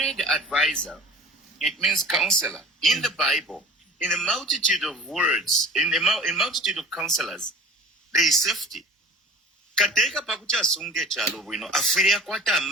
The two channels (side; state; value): both; normal; correlation 0.42